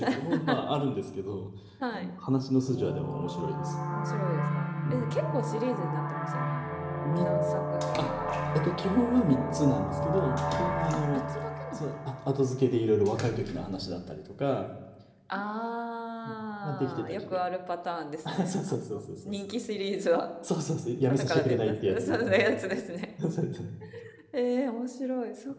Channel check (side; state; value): both; identical; correlation 1.00